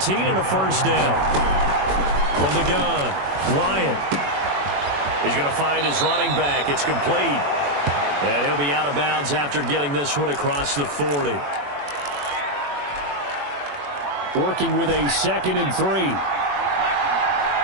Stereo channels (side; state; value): left; late; 21 ms